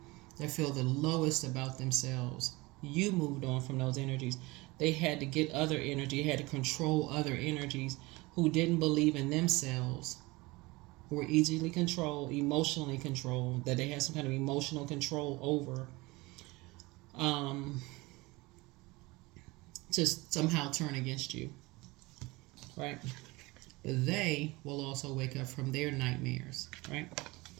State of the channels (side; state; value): left; quieter; 22.6 dB